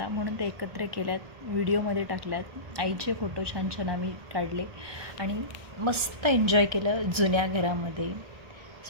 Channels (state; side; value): late; left; 1.2 ms